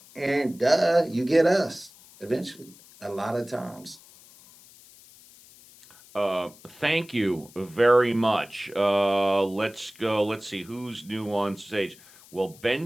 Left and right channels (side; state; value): left; noise; hiss, 23 dB below the sound